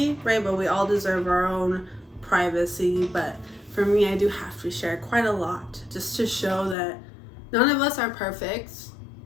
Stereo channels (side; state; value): right; drops out; at 6.8 s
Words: right? But we all deserve our own privacy. But for me, I do have to share quite a lot just to show that none of us are perfect.